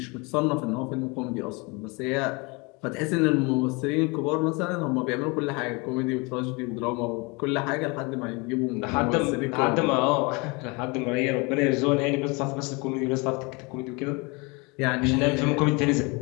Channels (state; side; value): quieter; right; 28.2 dB